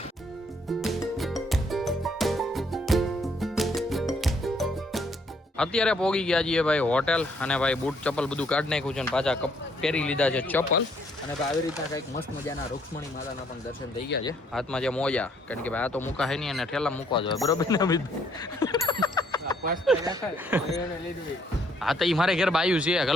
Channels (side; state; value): both; normal; correlation 0.67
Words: અત્યારે પહોંચી ગયા છીએ ભાઈ હોટેલ અને ભાઈ બૂટ ચપ્પલ બધું કાઢી નાખ્યું છે અને પાછા પહેરી લીધા છે ચપ્પલ. અને ભાઈ આવી રીતના કંઈક મસ્ત મજાના રૂક્ષ્મણી માતાના પણ દર્શન થઈ ગયા છે. હાથમાં જે મોજા, કારણ કે ભાઈ આ તો મૂકા હે નહીં અને ઠેલા મૂકવા જોઈએ, બરોબર ને? હા તો એ મારે ઘેર બાયું છે